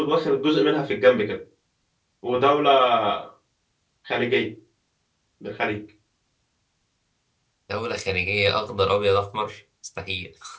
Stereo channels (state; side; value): identical; both; correlation 1.00